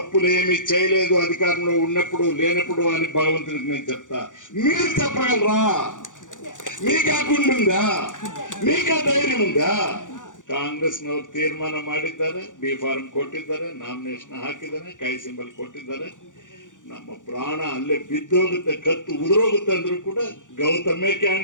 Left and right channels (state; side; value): late; right; 0.87 ms